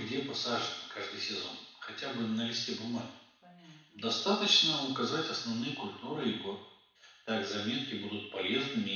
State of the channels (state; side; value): identical; both; correlation 1.00